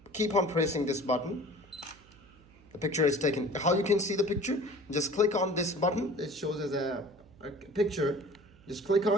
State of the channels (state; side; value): noise; right; hum, 26 dB below the sound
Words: keep on pressing this button, the picture is taken. How you can see the picture? Just click on this button. It shows as a picture. Just click